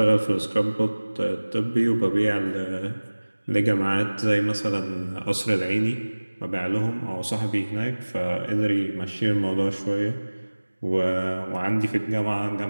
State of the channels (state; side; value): inverted; both; correlation -1.00